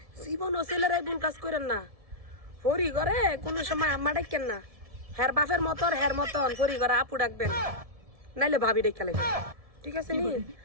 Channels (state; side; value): late; left; 1.7 ms